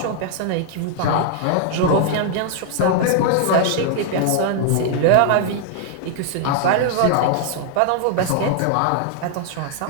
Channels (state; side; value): different; both; correlation 0.00